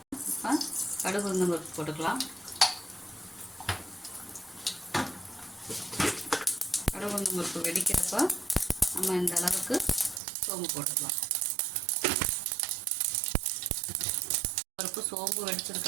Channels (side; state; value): left; drops out; at 10.2 s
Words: இப்போ கடுகு உளுந்தம் பருப்பு போட்டுக்கலாம். கடுகு உளுந்தம் பருப்பு வெடிக்கிறப்ப நம்ம இந்த அளவுக்கு சோம்பு போட்டுக்கலாம். பருப்பு சோம்பு